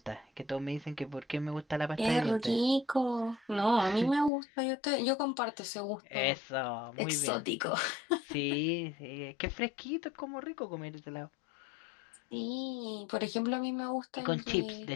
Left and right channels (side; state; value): right; drops out; at 4.3 s